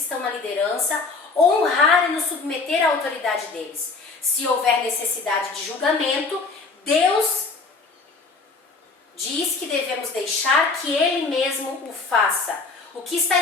estão na liderança, honrar e nos submeter à autoridade deles. Se houver necessidade de julgamento, Deus diz que devemos deixar que Ele mesmo o faça. O que está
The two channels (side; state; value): right; quieter; 4.1 dB